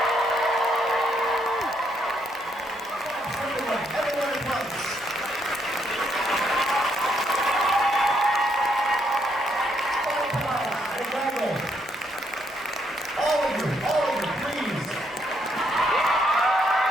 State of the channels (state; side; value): normal; both; correlation 0.74